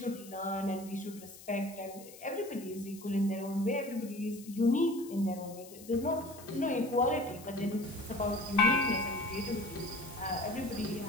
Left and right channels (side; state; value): left; noise; hiss, 18 dB below the sound